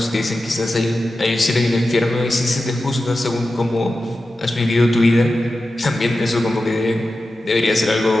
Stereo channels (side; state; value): both; normal; correlation 0.92